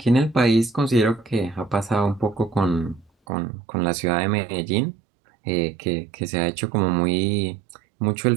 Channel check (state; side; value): drops out; left; at 3.1 s